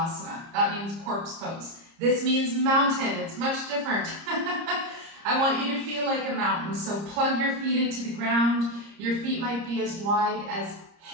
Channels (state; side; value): late; left; 30 ms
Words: That means corpse pose. This means mountain. It's much different. I want you to feel like a mountain. So plug your feet into the ground. Your feet might be as wide as